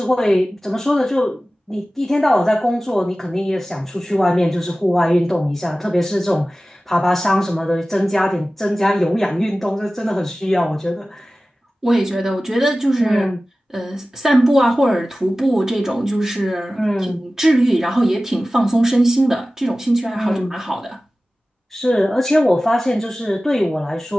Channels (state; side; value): normal; both; correlation 0.96